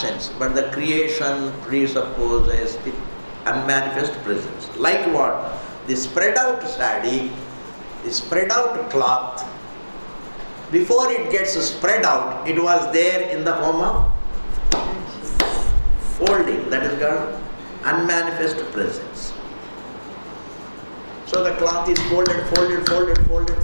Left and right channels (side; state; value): both; inverted; correlation -1.00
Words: but the creation presupposes the unmanifest presence. Like what? The spread out sari, the spread out cloth, before it gets spread out, it was there in the form of folding. That is called unmanifest presence. So the cloth is